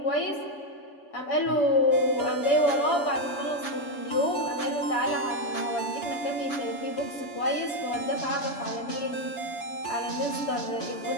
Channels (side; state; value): right; late; 7.0 ms